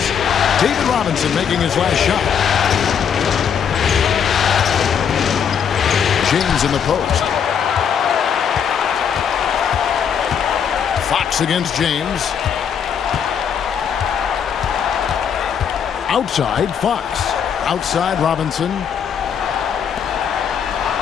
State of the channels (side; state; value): right; quieter; 7.7 dB